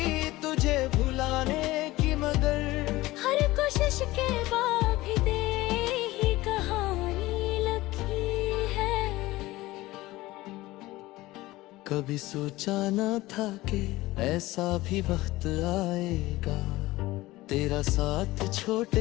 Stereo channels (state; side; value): quieter; right; 18.5 dB